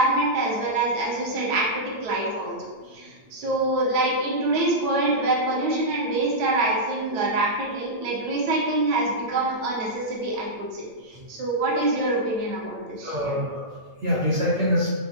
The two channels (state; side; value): late; left; 8.8 ms